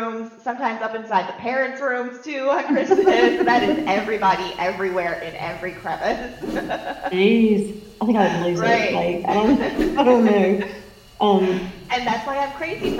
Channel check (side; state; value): both; identical; correlation 1.00